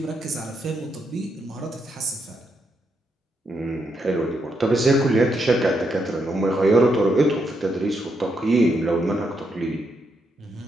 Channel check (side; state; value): both; normal; correlation 0.80